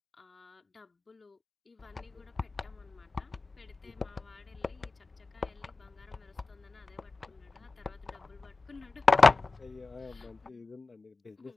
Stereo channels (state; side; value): quieter; right; 3.7 dB